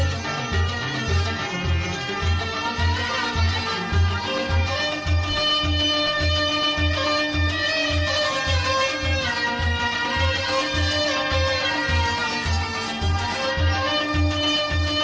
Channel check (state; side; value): identical; both; correlation 1.00